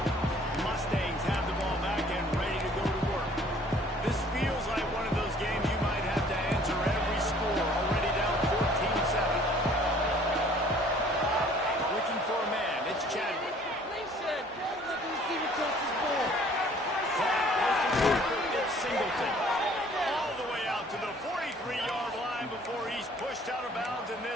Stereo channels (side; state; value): both; normal; correlation 0.55